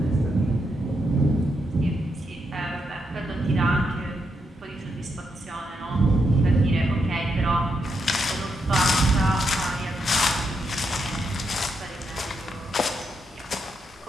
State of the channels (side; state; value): both; normal; correlation 0.81